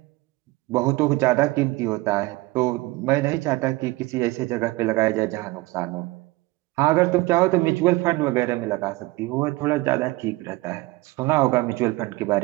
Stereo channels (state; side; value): quieter; left; 21.0 dB